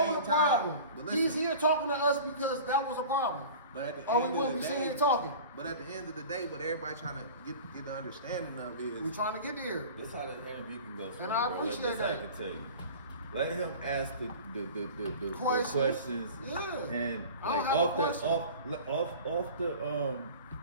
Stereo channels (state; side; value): inverted; both; correlation -0.39